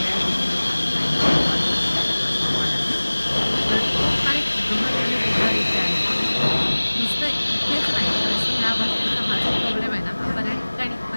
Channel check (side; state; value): both; inverted; correlation -1.00